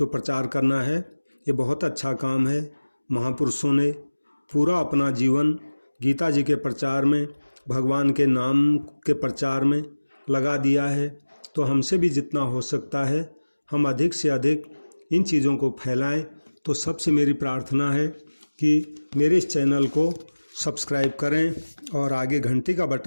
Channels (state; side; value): inverted; both; correlation -1.00